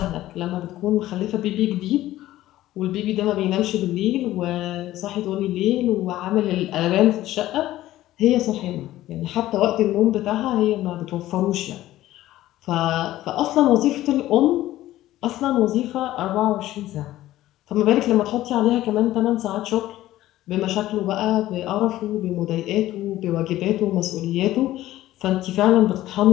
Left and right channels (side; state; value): right; quieter; 14.9 dB